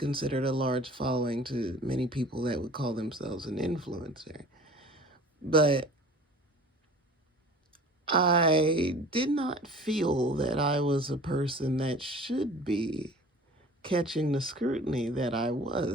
a large following to many people that would call themselves an influencer. But I did not feel that I was a person that should be catching the scrutiny that I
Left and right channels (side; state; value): both; normal; correlation 0.44